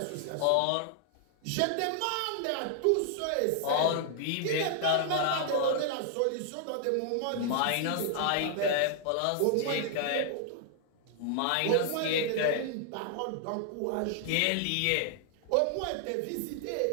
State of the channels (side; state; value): both; different; correlation 0.00